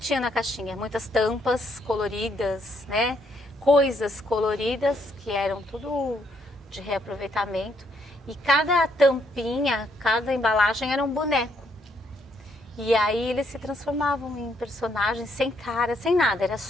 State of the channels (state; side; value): normal; both; correlation 0.73